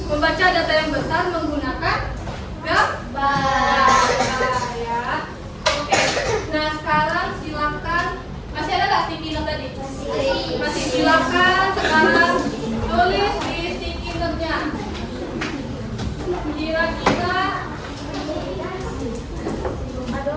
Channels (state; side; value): identical; both; correlation 1.00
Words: membaca data yang besar menggunakan gambar ya. Oke, nah sekarang silakan, masih ada nggak sticky note tadi? Masih, silakan sekarang tulis di sticky note-nya.